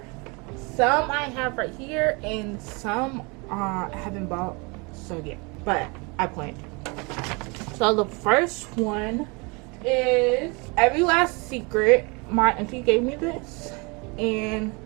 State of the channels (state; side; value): quieter; left; 29.4 dB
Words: Some I have right here, and some I haven't bought yet, but I plan to. So the first one is Every Last Secret. My auntie gave me this and